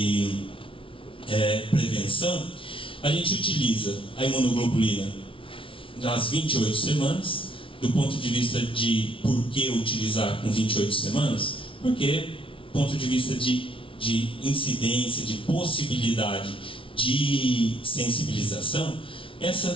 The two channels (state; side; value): late; right; 0.25 ms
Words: prevenção. A gente utiliza a imunoglobulina nas 28 semanas. Do ponto de vista de por que utilizar com 28 semanas, porque do ponto de vista de incidência, de possibilidade de sensibilização,